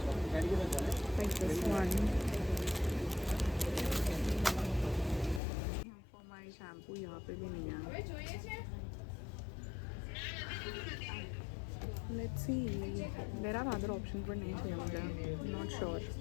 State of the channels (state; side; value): drops out; right; at 5.4 s